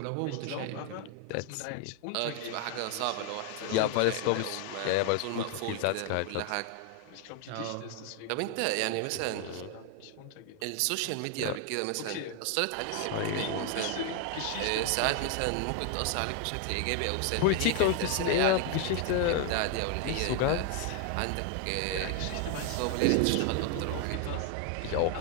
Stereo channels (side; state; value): both; different; correlation 0.00